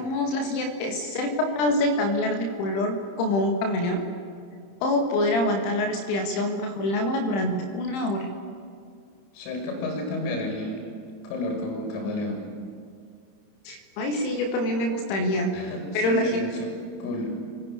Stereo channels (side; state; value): right; late; 31 ms